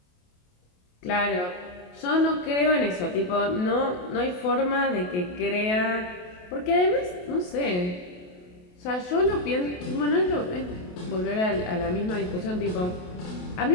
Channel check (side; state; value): right; late; 28 ms